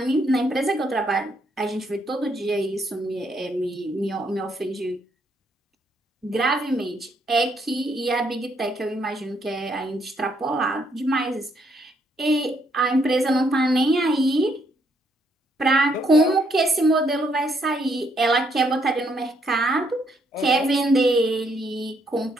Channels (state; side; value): normal; both; correlation 0.72